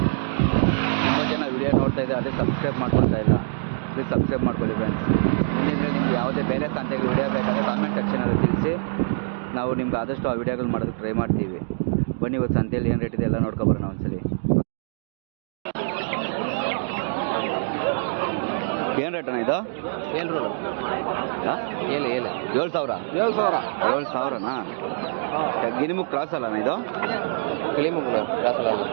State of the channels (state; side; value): silent; left; digital silence